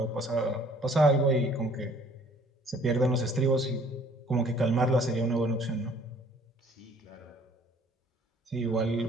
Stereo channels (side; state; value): both; normal; correlation 0.57